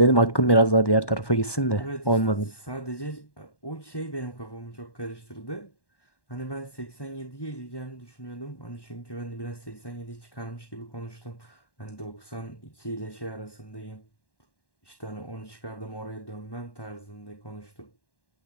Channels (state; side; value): late; right; 1.1 ms